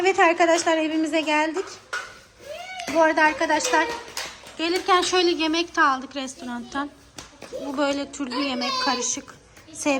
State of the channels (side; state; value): both; identical; correlation 1.00